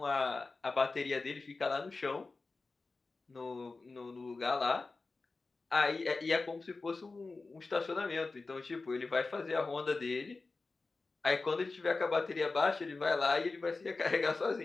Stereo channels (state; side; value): quieter; right; 3.8 dB